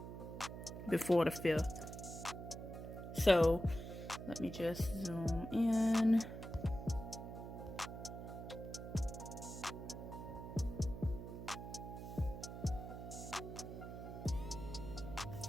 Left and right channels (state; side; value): noise; right; hum, 9 dB below the sound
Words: before the 5th. So let me just zoom in.